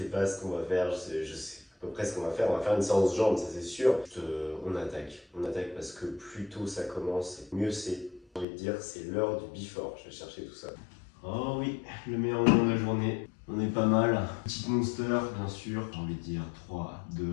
pas ce qu'on va faire, je sais à peu près ce qu'on va faire une séance jambes, ça c'est sûr. On attaque parce que plus tôt ça commence, mieux c'est. J'ai envie de dire c'est l'heure du before, je vais chercher tout ça. Oh oui, le meilleur moment de la journée. On est pas mal. Petite monster, bien sûr. J'ai envie de dire 3,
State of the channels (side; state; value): right; drops out; at 8.5 s